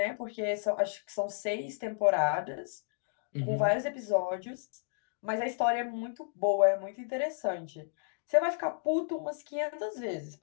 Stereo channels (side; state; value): right; silent; digital silence